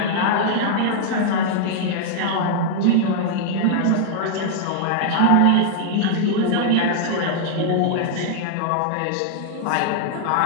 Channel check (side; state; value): both; different; correlation -0.01